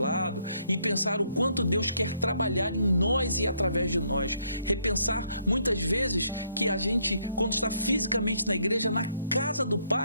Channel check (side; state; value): both; inverted; correlation -0.71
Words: e pensar o quanto Deus quer trabalhar em nós e através de nós. Repensar muitas vezes que a gente, quando está fisicamente na igreja, na casa do